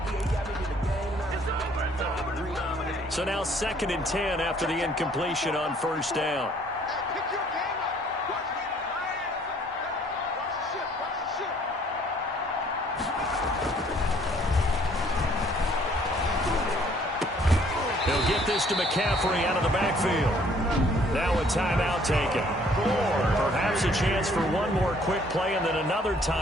So now second and 10 after the incompletion on first down. He'll get this to McCaffrey out of the backfield. Now a timeout taken. Perhaps a chance for one more quick play and then another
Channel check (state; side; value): normal; both; correlation 0.60